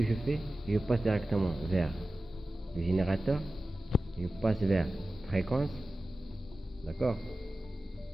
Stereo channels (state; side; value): normal; both; correlation 0.95